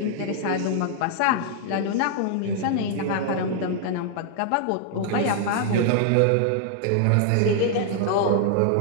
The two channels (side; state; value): both; different; correlation -0.01